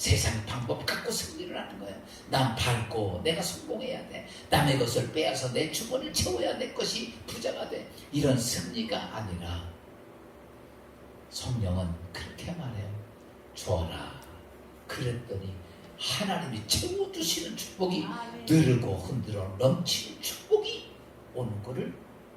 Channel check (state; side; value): identical; both; correlation 1.00